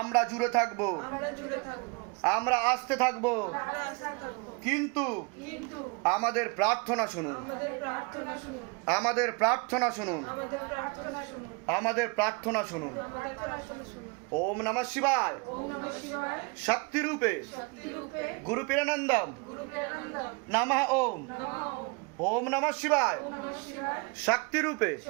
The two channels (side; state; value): left; quieter; 30.1 dB